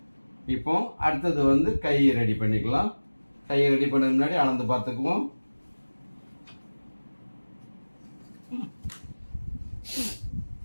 இப்போ அடுத்தது வந்து கை ரெடி பண்ணிக்கலாம். கையை ரெடி பண்ண முன்னாடி அளந்து பார்த்துக்குவோம்.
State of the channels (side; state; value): both; inverted; correlation -1.00